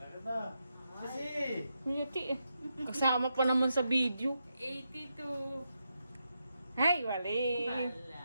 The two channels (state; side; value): inverted; both; correlation -0.84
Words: Naganda. Kasi. Yuti eh. Kasama pa naman sa video. 82. Ay, wali.